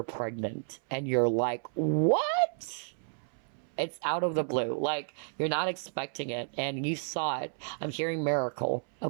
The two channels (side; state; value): left; silent; 57 dB below the other